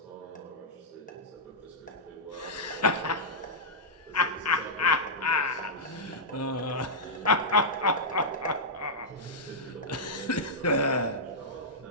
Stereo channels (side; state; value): both; normal; correlation -0.10